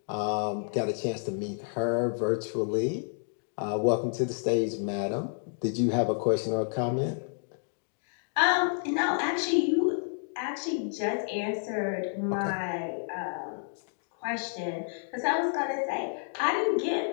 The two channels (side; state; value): right; silent; digital silence